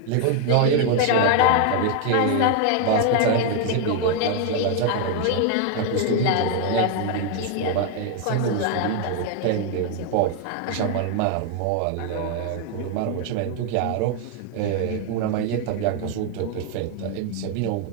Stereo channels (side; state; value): both; different; correlation 0.00